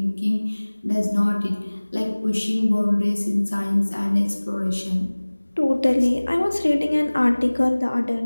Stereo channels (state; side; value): inverted; both; correlation -1.00